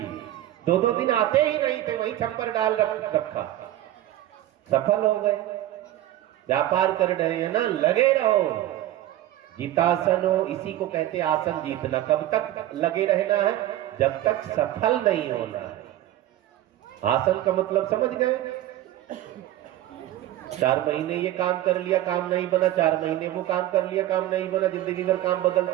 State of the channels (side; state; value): left; quieter; 13.9 dB